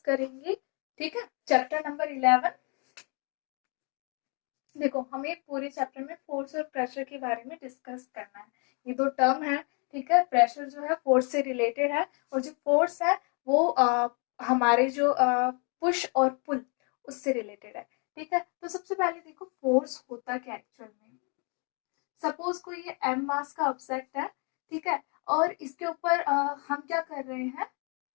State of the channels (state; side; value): quieter; right; 35.7 dB